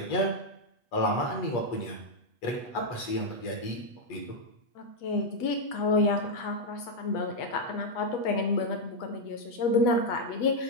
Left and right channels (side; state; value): right; late; 8.3 ms